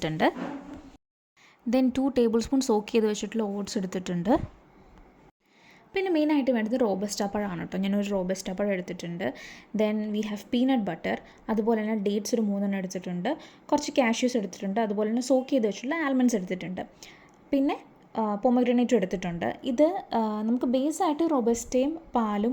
ദെൻ 2 ടേബിൾ സ്പൂൺ സോക്ക് ചെയ്ത് വെച്ചിട്ടുള്ള ഓട്സ് എടുത്തിട്ടുണ്ട്. പിന്നെ മെയിനായിട്ട് വേണ്ടത് റോബസ്റ്റ പഴമാണ് കേട്ടോ. ഞാനൊരു റോബസ്റ്റ പഴം എടുത്തിട്ടുണ്ട്. Then we have peanut butter, അതുപോലെ തന്നെ ഡേറ്റ്സ് ഒരു 3 എടുത്തിട്ടുണ്ട്. കുറച്ച് കാഷ്യൂസ് എടുത്തിട്ടുണ്ട്. അതുപോലെ തന്നെ സോക്ക് ചെയ്ത് വെച്ചിട്ടുള്ള ആൽമണ്ട്സ് എടുത്തിട്ടുണ്ട്. പിന്നെ പൊമഗ്രാനേറ്റും എടുത്തിട്ടുണ്ട്. ഇത് നമുക്ക് ബേസായിട്ട് റോബസ്റ്റയും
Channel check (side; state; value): both; identical; correlation 1.00